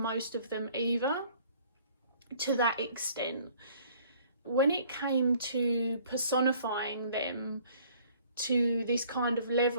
of them either, to that extent. When it came to personifying them to this kind of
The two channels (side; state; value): both; inverted; correlation -0.56